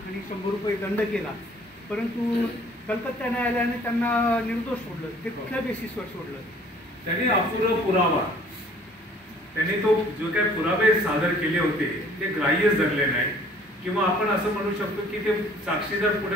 100 रुपये दंड केला, परंतु कलकत्ता न्यायालयाने त्यांना निर्दोष सोडलं. ते कुठल्या बेसिसवर सोडलं? त्यांनी अपुरा पुरावा, त्यांनी तो जो काही पुरावे सादर केले होते ते ग्राह्य धरले नाही, किंवा आपण असं म्हणू शकतो की ते साक्षीदार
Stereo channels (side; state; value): both; normal; correlation 0.55